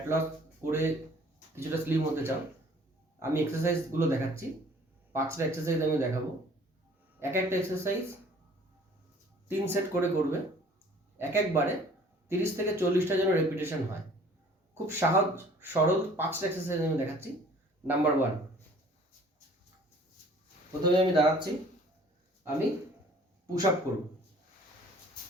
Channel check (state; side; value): normal; both; correlation 0.52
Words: লস করে কিছুটা স্লিম হতে চাও, আমি এক্সারসাইজগুলো দেখাচ্ছি। 5টা এক্সারসাইজ আমি দেখাবো। এক একটা এক্সারসাইজ 3 সেট করে করবে। একবারে 30 থেকে 40টা যেন রেপিটেশন হয়। খুব সহজ সরল 5টা এক্সারসাইজ আমি দেখাচ্ছি। নাম্বার 1, প্রথমে আমি দাঁড়াচ্ছি, আমি পুশ আপ করব।